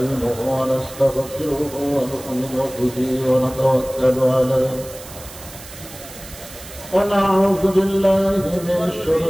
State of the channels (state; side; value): noise; right; hiss, 16 dB below the sound